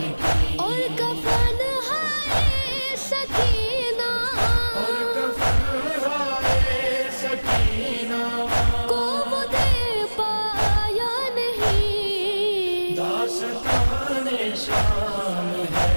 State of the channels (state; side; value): inverted; both; correlation -1.00